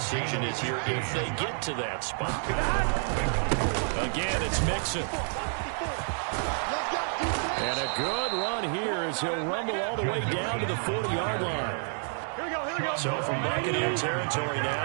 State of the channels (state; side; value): silent; left; 58 dB below the other